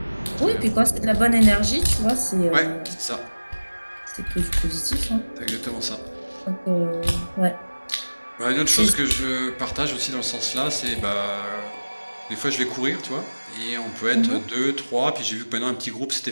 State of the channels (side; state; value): both; inverted; correlation -1.00